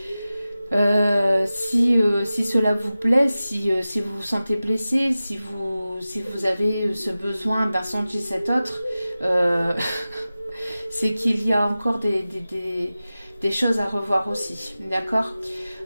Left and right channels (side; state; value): both; inverted; correlation -0.95